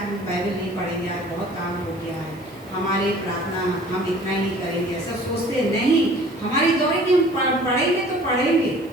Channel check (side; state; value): right; noise; hiss, 28 dB below the sound